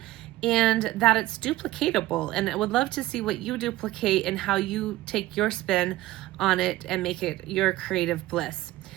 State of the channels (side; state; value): left; quieter; 16.7 dB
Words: and that it's duplicatable, and I would love to see what you duplicate and how you take your spin on it and make it your creative bliss.